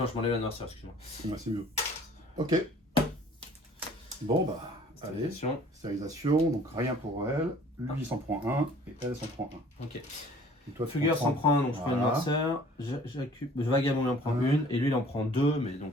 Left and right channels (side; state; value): both; normal; correlation 0.52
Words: je m'enlève la noirceur, excuse-moi. Ouais, c'est mieux. Ok. Bon, bah, allez. Stérilisation, donc rien pour elle. Lui, il s'en prend un, et elle s'en prend un. Ok. Et toi, Fugueur s'en prend un, donc je prends une Voilà. noirceur. Vagabond il en prend une, et lui il en prend 2, mais donc